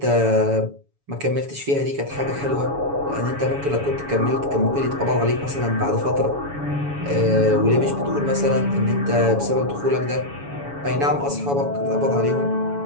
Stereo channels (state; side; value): late; left; 7.1 ms